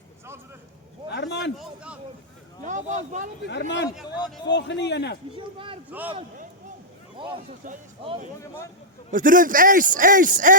Herman. Ja, Bas, bal op die Herman. Volgende ene. Ons doen dit ace.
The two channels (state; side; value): normal; both; correlation -0.09